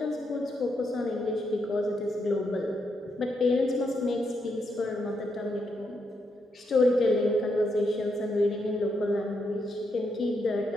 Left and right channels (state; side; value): normal; both; correlation 0.80